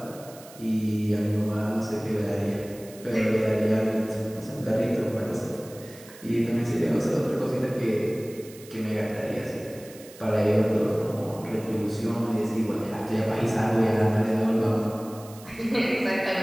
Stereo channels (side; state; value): right; noise; hiss, 20 dB below the sound